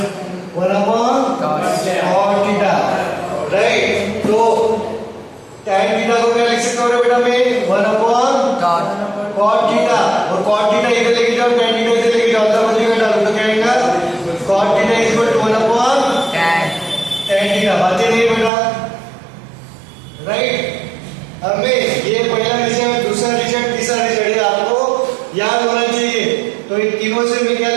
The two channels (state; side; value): drops out; left; at 18.5 s